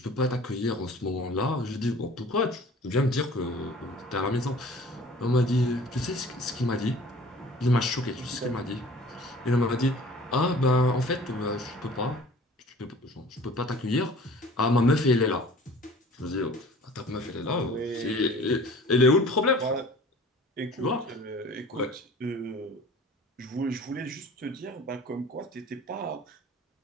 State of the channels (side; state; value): both; normal; correlation 0.46